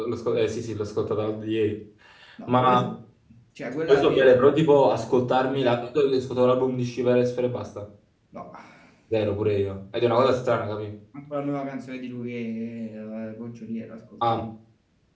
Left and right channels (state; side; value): identical; both; correlation 1.00